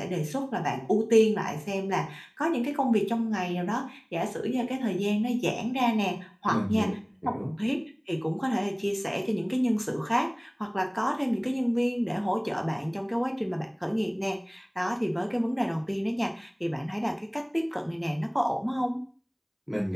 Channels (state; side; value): identical; both; correlation 1.00